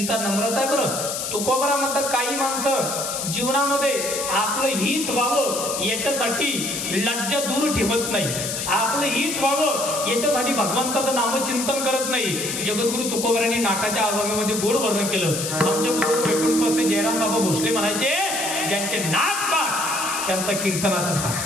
नम्रता आहे बरं. तुकोबारा म्हणतात काही माणसं जीवनामध्ये आपलं हित व्हावं याच्यासाठी लज्जा दूर ठेवत नाही. आपलं हित व्हावं याच्यासाठी भगवंताचं नामचिंतन करत नाही. जगद्गुरु तुकोबारांनी नाटाच्या अभंगामध्ये गोड वर्णन केलं. आमच्या गुरु वैकुंठपासे जयराम बाबा भोसले म्हणायचे, ज्यांचे नाक पाठ त्यांचा कीर्तनाचा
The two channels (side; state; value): left; noise; hiss, 4 dB below the sound